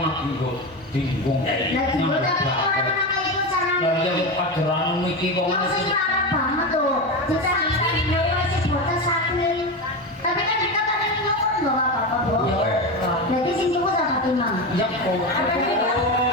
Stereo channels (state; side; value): normal; both; correlation 0.19